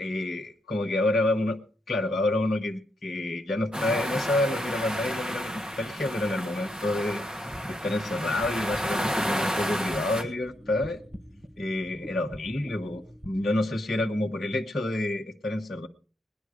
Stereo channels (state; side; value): normal; both; correlation 0.80